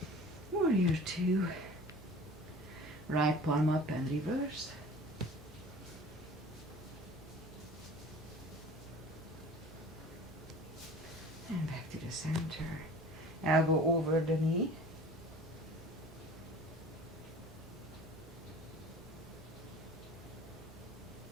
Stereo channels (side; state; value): both; normal; correlation 0.43